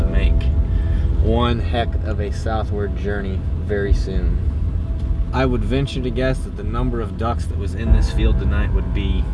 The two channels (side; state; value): both; identical; correlation 1.00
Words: make one heck of a southward journey very soon. I would venture to guess that the number of ducks that was in this field tonight would be